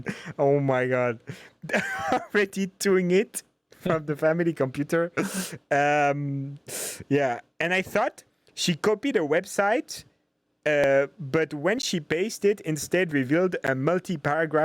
Oh my God. Already doing it from the family computer. Yeah, and I thought she copied a website, but when she pasted, instead revealed a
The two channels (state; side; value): identical; both; correlation 1.00